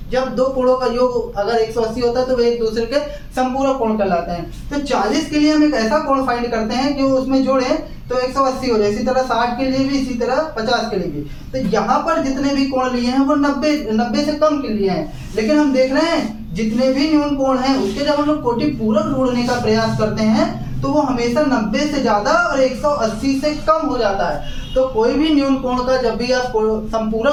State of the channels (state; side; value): identical; both; correlation 1.00